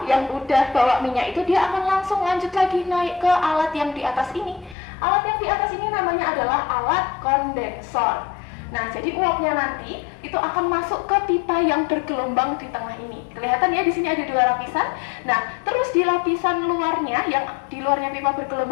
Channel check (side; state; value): right; drops out; at 4.8 s